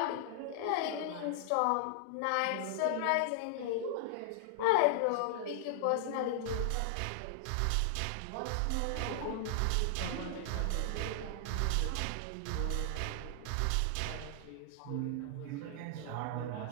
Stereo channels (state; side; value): different; both; correlation -0.01